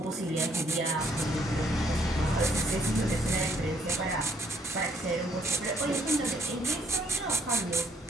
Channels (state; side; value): normal; both; correlation 0.67